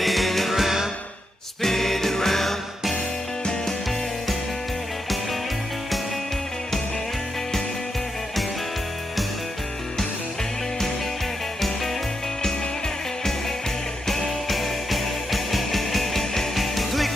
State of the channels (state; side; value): normal; both; correlation 0.84